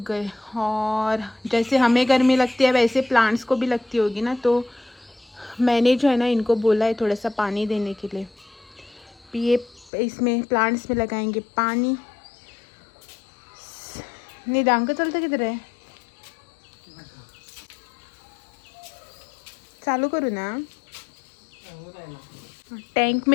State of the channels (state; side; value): drops out; right; at 9.9 s